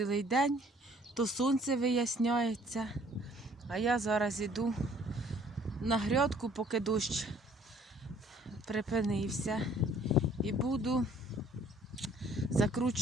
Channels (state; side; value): normal; both; correlation 0.58